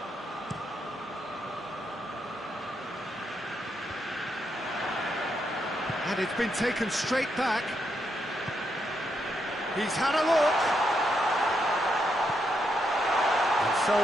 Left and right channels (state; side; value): normal; both; correlation 0.80